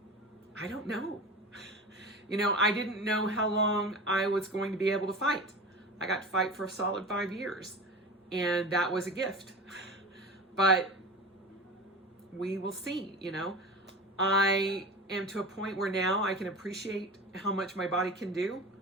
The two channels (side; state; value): both; normal; correlation 0.31